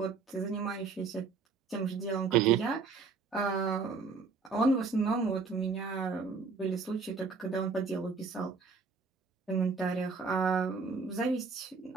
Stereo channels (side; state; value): left; quieter; 4.7 dB